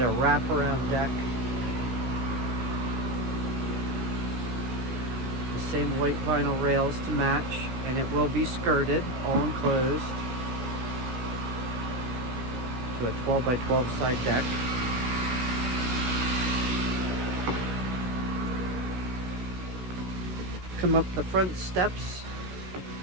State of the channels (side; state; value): left; late; 16 ms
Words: a wraparound deck. The same white vinyl rails to match, and it will be skirted, all enclosed, to a 12 by 12 side deck. Come up the front steps.